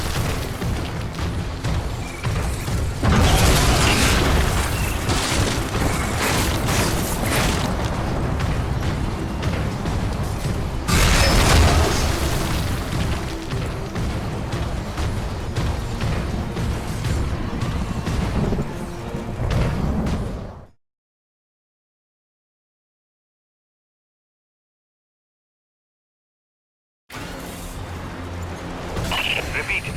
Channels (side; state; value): both; identical; correlation 1.00